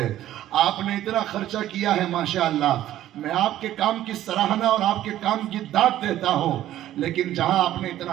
آپ نے اتنا خرچہ کیا ہے ماشاءاللہ، میں آپ کے کام کی سراہنا اور آپ کے کام کی داد دیتا ہوں، لیکن جہاں آپ نے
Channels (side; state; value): left; quieter; 13.1 dB